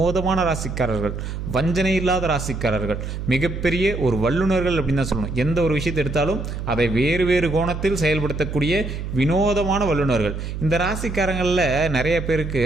ராசிக்காரர்கள், வஞ்சனை இல்லாத ராசிக்காரர்கள், மிகப்பெரிய ஒரு வல்லுநர்கள் அப்படின்னு தான் சொல்லணும். எந்த ஒரு விஷயத்தை எடுத்தாலும் அதை வேறு வேறு கோணத்தில் செயல்படுத்தக்கூடிய வினோதமான வல்லுநர்கள். இந்த ராசிக்காரங்களில் நிறைய பேருக்கு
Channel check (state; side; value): noise; right; hum, 6 dB below the sound